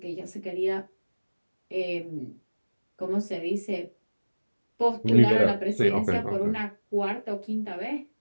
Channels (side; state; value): both; inverted; correlation -1.00